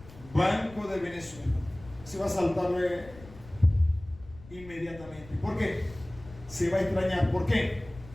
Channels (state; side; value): noise; left; rumble, 19 dB below the sound